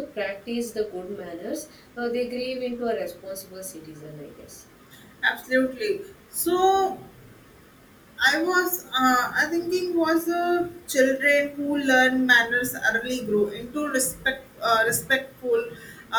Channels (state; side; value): identical; both; correlation 1.00